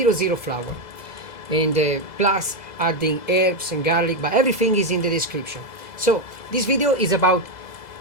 flour. And plus adding herbs and garlic, but everything is in the description. So this video is about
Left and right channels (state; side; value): late; right; 2.0 ms